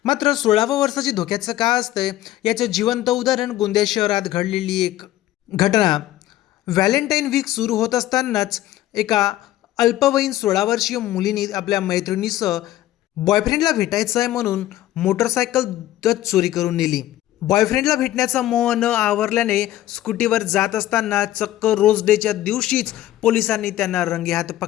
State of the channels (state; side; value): quieter; right; 14.3 dB